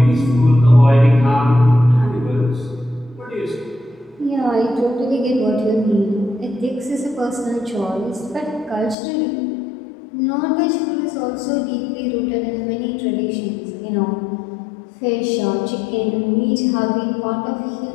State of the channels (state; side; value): drops out; right; at 9.0 s